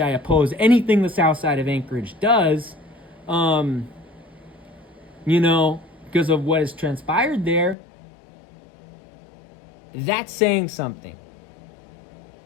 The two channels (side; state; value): right; drops out; at 7.8 s